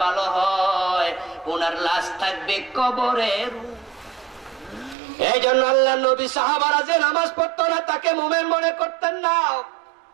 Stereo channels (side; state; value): left; drops out; at 5.0 s